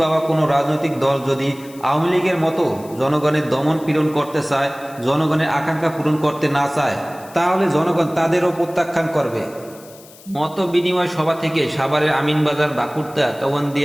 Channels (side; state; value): left; noise; hiss, 22 dB below the sound